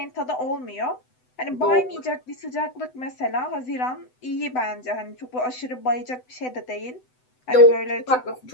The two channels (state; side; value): late; right; 7.9 ms